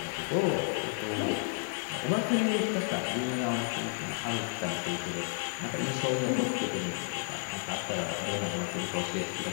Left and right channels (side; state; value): right; silent; 57 dB below the other